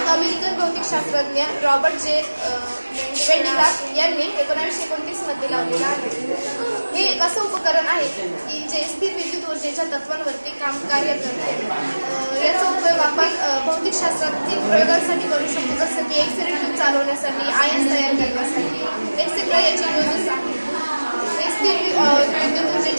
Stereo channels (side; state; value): both; inverted; correlation -1.00